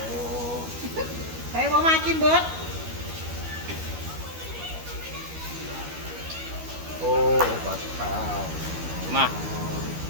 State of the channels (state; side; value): late; left; 12 ms